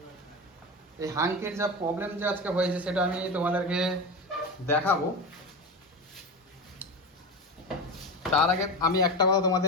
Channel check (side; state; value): both; normal; correlation 0.23